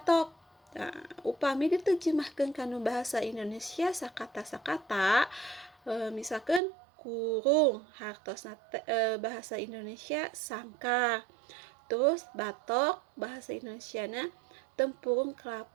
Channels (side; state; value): left; drops out; at 6.6 s